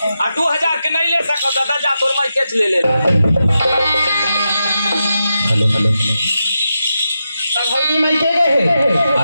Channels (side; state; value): both; inverted; correlation -0.88